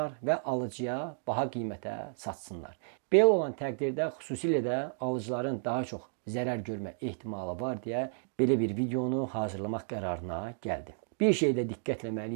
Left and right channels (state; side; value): silent; left; digital silence